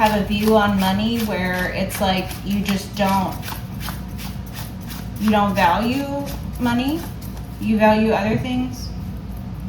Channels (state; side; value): identical; both; correlation 1.00